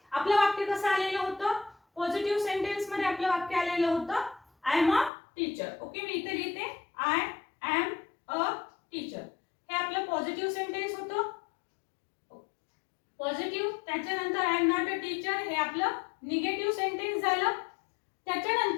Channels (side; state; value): right; drops out; at 5.1 s